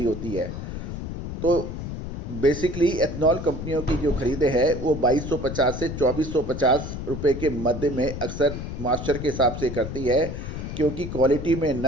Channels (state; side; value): noise; left; rumble, 6 dB below the sound